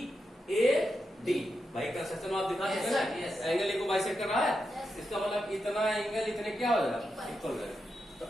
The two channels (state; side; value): normal; both; correlation 0.87